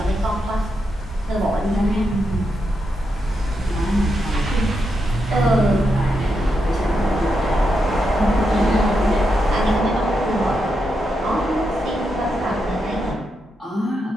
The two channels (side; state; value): both; normal; correlation 0.84